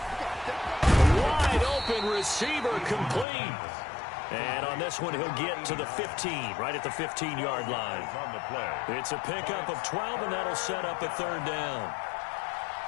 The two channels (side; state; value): right; drops out; at 3.2 s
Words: Wide open receiver complete. And on this one, he'll get to the 15, right at the 15-yard line. It's a pickup of 12, and that'll set up a 3rd down.